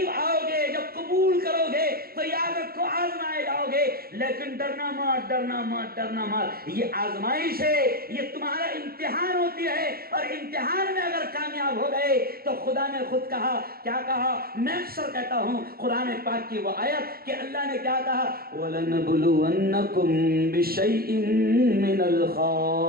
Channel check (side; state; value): left; late; 0.44 ms